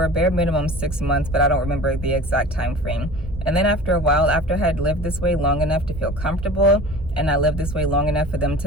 a bare minimum 6 months, but I don't remember the exact time frame. And then after a while, after I had lived this way long enough to feel comfortable, and I lived this way long enough for them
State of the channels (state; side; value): normal; both; correlation 0.40